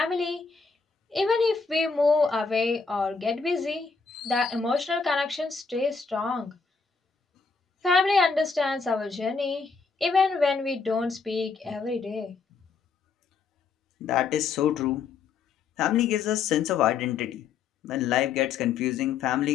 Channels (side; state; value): right; quieter; 5.1 dB